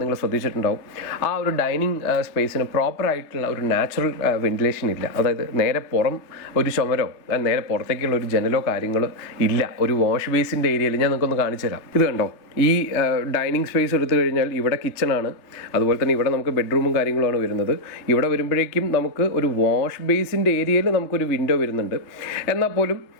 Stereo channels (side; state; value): right; late; 3.2 ms